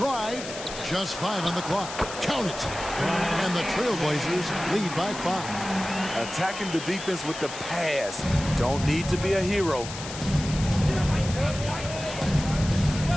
Just 5 on the clock. Count it. And the Trailblazers lead by 5. Attacking the defense with the pass. Don't need to be a hero.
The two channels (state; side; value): noise; left; hiss, 10 dB below the sound